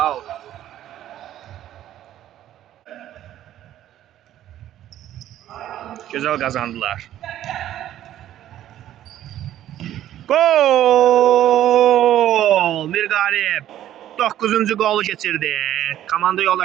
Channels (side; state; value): left; quieter; 12.3 dB